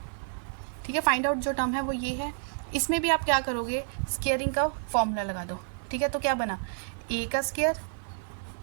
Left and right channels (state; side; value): silent; left; digital silence